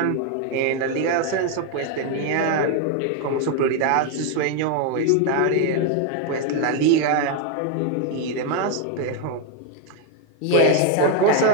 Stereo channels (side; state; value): both; different; correlation 0.01